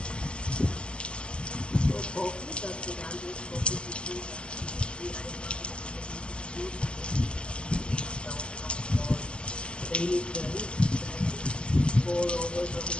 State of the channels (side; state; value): right; late; 0.056 ms